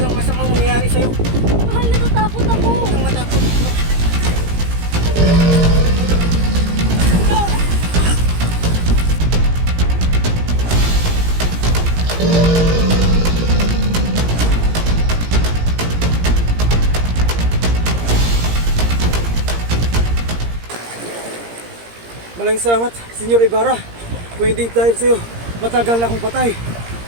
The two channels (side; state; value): left; late; 17 ms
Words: masamang mangyayari sa'yo. Mahal, natatakot ako! Huwag kang matakot. Maraming salamat, Senyor Ibarra. Kung hindi dahil sa'yo, matagal na akong patay.